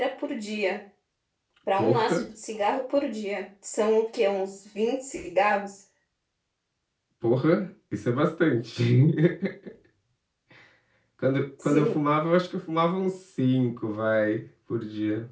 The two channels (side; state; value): both; identical; correlation 1.00